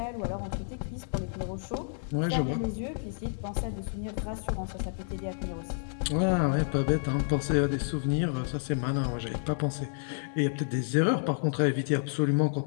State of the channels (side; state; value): right; silent; 58 dB below the other